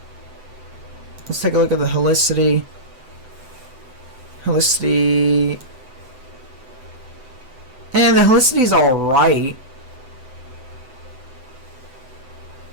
Let's take a look at the helicity. And the helicity's alright.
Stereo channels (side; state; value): left; late; 7.9 ms